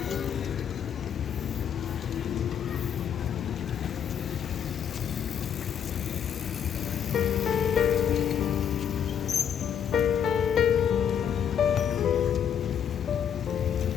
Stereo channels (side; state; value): right; quieter; 8.4 dB